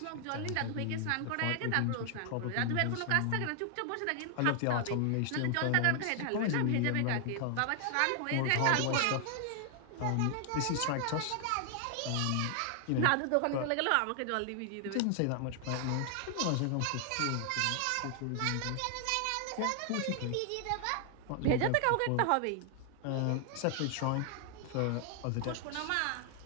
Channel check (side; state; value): both; different; correlation 0.00